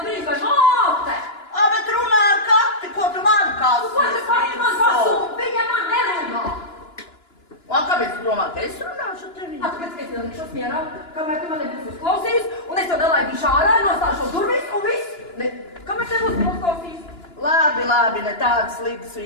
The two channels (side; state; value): right; late; 2.9 ms